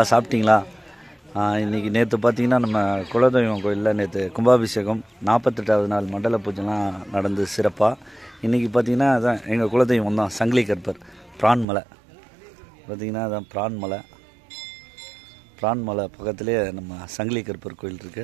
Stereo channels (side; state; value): left; drops out; at 11.7 s